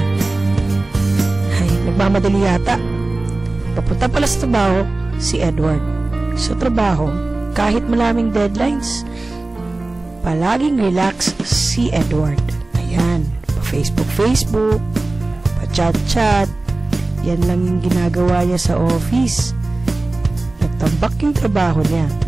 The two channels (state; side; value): quieter; left; 3.0 dB